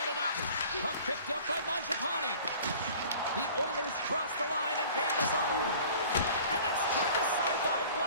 it up. Puck picked up by Mangiapane. The Oilers cross the line and gain the zone. And it's turned aside by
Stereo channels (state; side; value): inverted; both; correlation -0.47